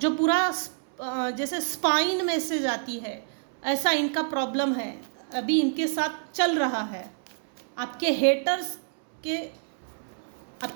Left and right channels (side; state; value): left; silent; 60 dB below the other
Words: जो पूरा जैसे स्पाइन में से जाती है, ऐसा इनका प्रॉब्लम है, अभी इनके साथ चल रहा है। आपके